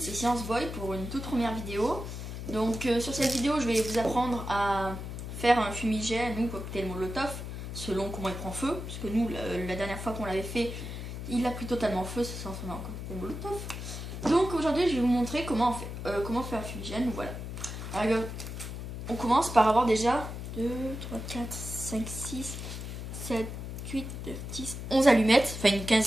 c'est Science Boy pour une toute première vidéo. Donc sur cette vidéo, je vais vous apprendre à faire un fumigène ou cocktail molotov selon comment il prend feu. Parce que nous, la dernière fois qu'on l'avait fait, il a pris totalement feu, ça s'en fait un cocktail molotov. Donc aujourd'hui, je vais vous montrer comment faire un fumigène. Voilà. Alors, on commence par avoir déjà 2, 3, 4, 5, 6, 7, 8, 9, 10, 11 allumettes. Enfin une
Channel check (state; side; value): noise; left; hum, 7 dB below the sound